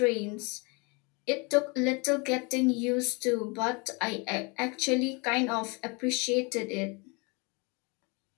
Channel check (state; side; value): quieter; right; 30.0 dB